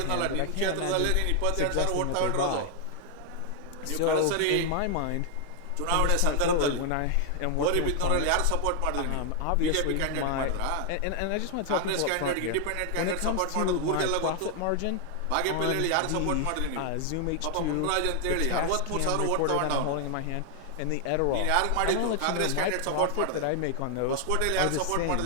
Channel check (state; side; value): different; both; correlation 0.00